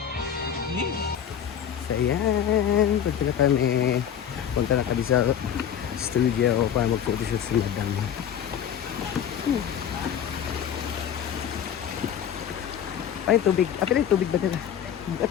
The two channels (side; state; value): right; quieter; 9.0 dB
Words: So, ayan. Punta na kami sa studio para mag-photoshoot si Madam. Ay, tubig. Apil yung tubig ba dala?